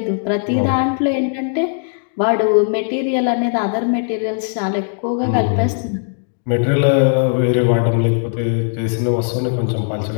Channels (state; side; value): silent; right; digital silence